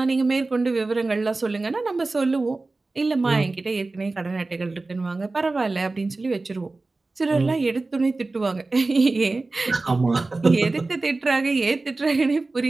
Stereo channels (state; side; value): quieter; left; 3.4 dB